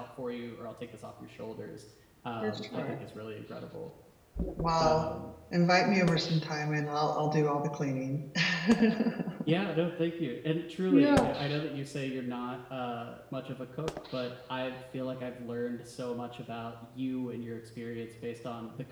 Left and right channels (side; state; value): both; identical; correlation 1.00